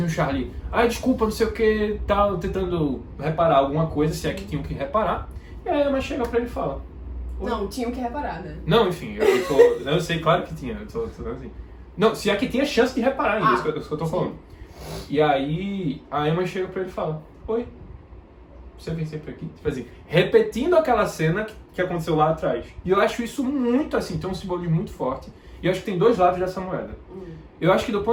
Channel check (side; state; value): both; identical; correlation 1.00